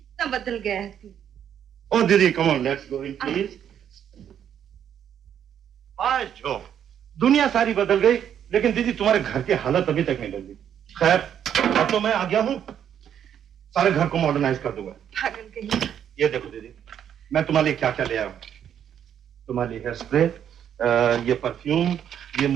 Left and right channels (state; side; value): quieter; left; 9.3 dB